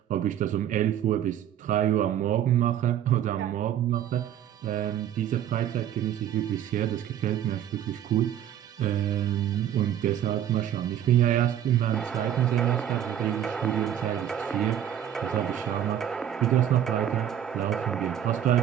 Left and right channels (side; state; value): left; quieter; 10.4 dB